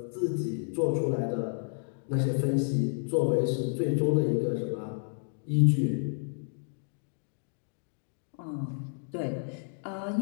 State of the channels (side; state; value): right; silent; digital silence